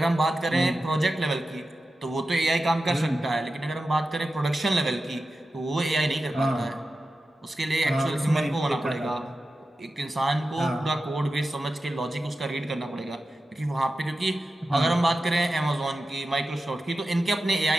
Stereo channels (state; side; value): normal; both; correlation 0.92